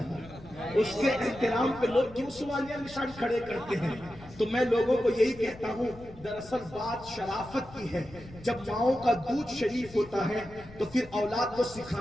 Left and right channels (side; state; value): left; noise; rumble, 19 dB below the sound